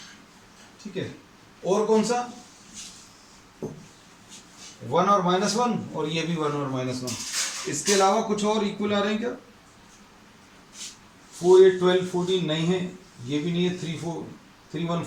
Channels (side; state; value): both; identical; correlation 1.00